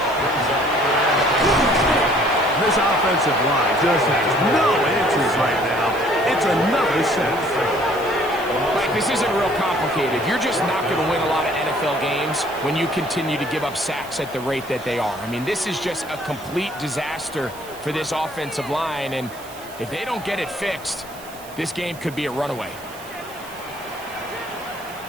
This offensive line just has no answers right now. It's another set. Mike, this isn't real complicated. You're just not going to win a lot of NFL games when you continue to give up sacks at the rate that they are. I mean, this is just a complete disaster for this offensive line, and if they don't get it fixed, this game could be a runaway.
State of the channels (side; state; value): right; noise; hiss, 19 dB below the sound